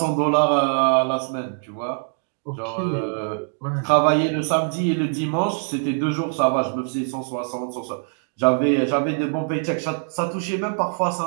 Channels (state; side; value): silent; left; 63 dB below the other